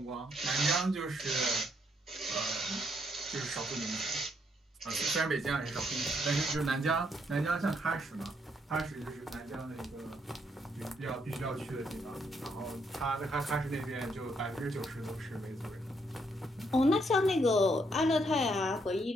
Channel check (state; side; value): normal; both; correlation 0.73